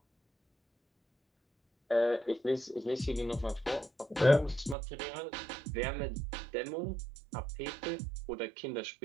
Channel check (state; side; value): drops out; left; at 4.8 s